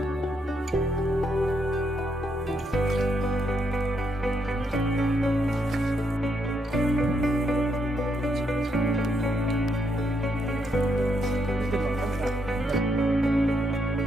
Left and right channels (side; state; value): both; normal; correlation 0.78